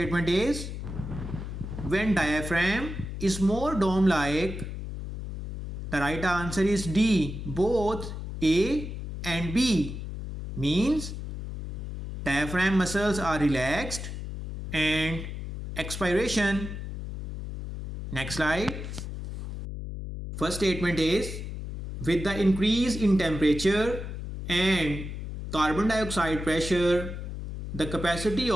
is when diaphragm is more dome-like. The right answer is D, both A and B. Means diaphragm muscles are relaxed and expiration. Next slide. First statement is with the increase in temperature and carbon dioxide pressure, the capacity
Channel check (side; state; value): left; noise; hum, 7 dB below the sound